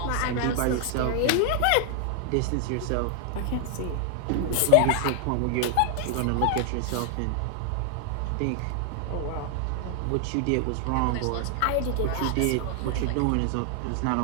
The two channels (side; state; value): both; different; correlation 0.00